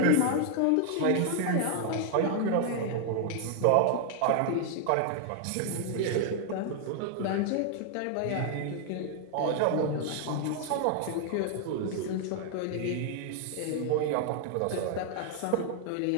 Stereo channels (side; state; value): both; different; correlation 0.00